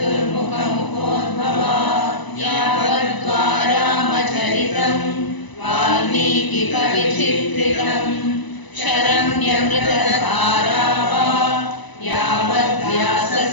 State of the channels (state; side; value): late; right; 1.0 ms